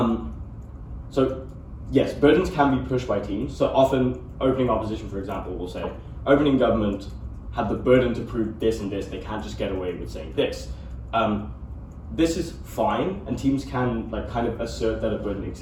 so yes, burdens can be pushed by teams. So often opening opposition, for example, will say opening government had the burden to prove this and this. They can't just get away with saying this. This is fine, and teams can like kind of assert that a burden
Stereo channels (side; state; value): both; identical; correlation 1.00